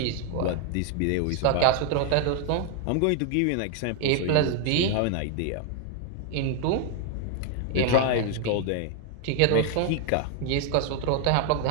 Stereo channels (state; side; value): different; both; correlation 0.00